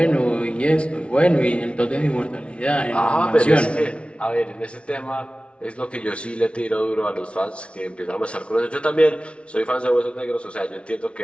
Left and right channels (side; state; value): right; late; 0.060 ms